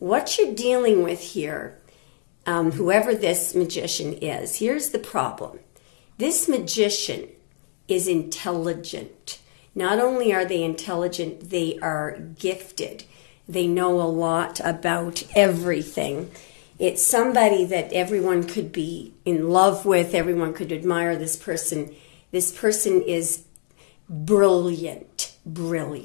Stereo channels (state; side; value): silent; right; digital silence